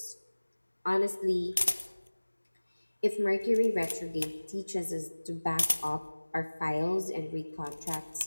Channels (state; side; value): inverted; both; correlation -1.00